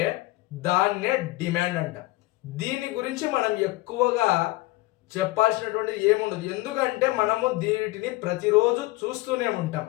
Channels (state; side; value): quieter; right; 19.8 dB